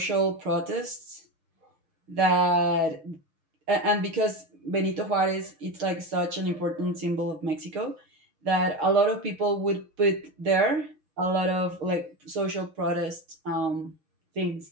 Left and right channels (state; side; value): late; left; 6.5 ms